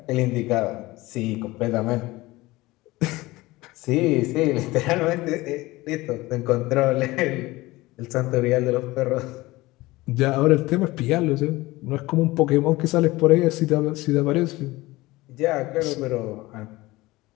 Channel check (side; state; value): right; quieter; 19.8 dB